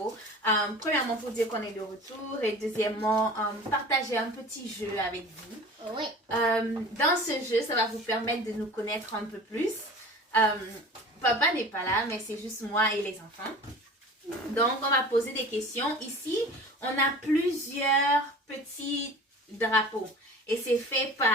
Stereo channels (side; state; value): both; normal; correlation 0.40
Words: Premièrement, pour dire qu'on est de retour. Et deuxièmement, partager un petit jeu avec vous. Oui. Dans ce jeu, ça va vous permettre de nous connaître un peu plus. Papa n'est pas là, mais c'est juste moi et les enfants. Donc, on va poser des questions. Ici, on a plusieurs petits drapeaux. Et c'est fait